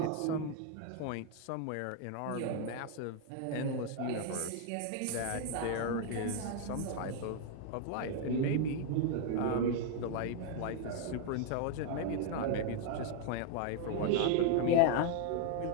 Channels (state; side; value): different; both; correlation 0.00